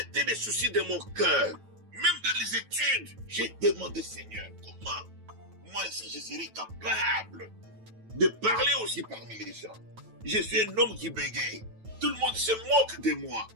les soucis de mon cœur. Même dans les études, j'ai demandé Seigneur, comment moi ici je serai capable de parler aussi parmi les gens. Je suis un homme qui bégaye. Tout le monde se moque de moi.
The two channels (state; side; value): late; left; 9.1 ms